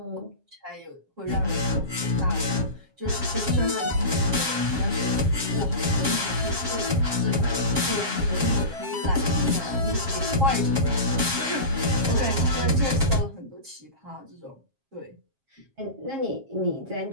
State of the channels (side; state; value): left; late; 7.4 ms